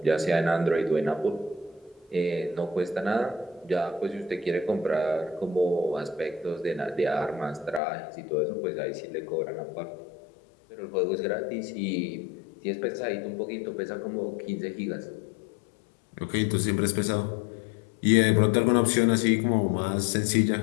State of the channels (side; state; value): right; drops out; at 7.8 s